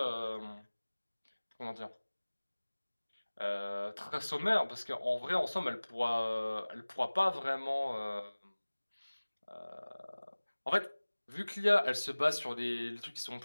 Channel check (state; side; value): inverted; both; correlation -1.00